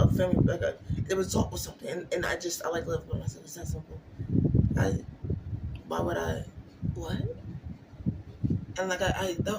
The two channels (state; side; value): identical; both; correlation 1.00